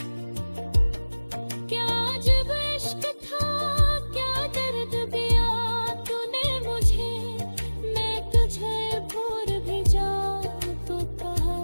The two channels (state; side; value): inverted; both; correlation -1.00